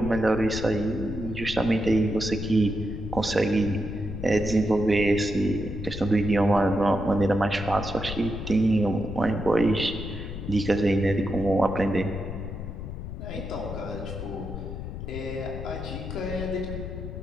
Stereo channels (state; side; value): noise; left; rumble, 8 dB below the sound